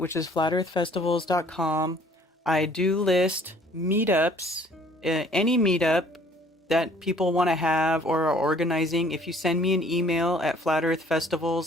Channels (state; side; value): normal; both; correlation 0.56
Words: is flatearthfestivals.com, I do list meetups, any meetup that people want to have or are organizing. If you send me an email at